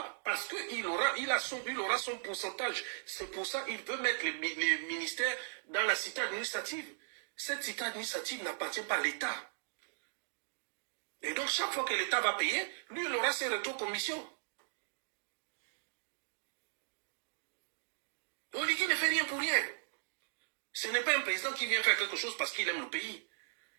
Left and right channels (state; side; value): silent; left; digital silence